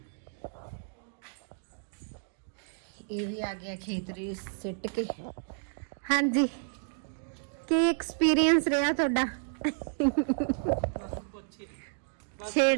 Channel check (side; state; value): left; silent; digital silence